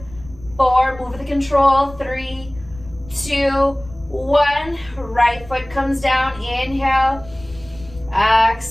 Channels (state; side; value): noise; left; rumble, 19 dB below the sound